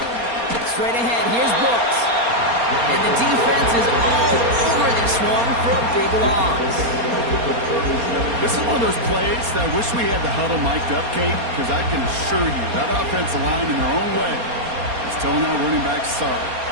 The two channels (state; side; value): late; left; 4.3 ms